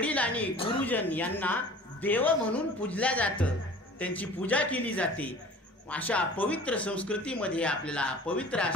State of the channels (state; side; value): normal; both; correlation 0.44